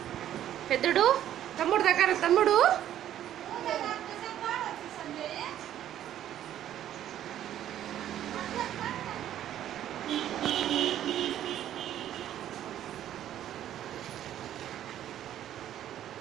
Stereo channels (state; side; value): quieter; left; 11.5 dB